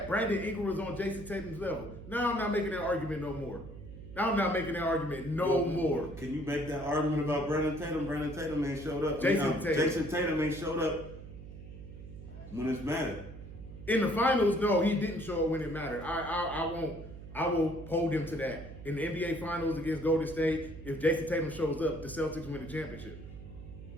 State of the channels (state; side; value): noise; right; hum, 13 dB below the sound